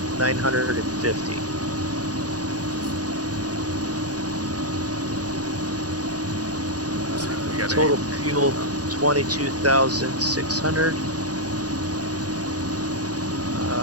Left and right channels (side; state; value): left; late; 0.68 ms